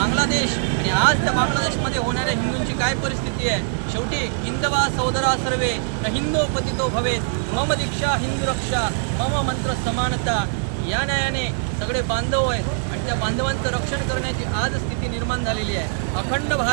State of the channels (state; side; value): silent; left; digital silence